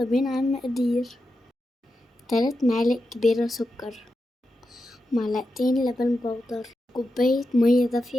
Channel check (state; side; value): normal; both; correlation 0.89